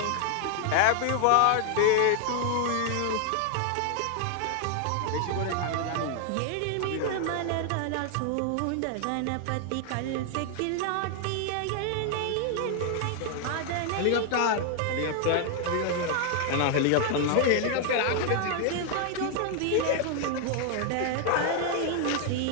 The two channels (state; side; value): different; both; correlation 0.00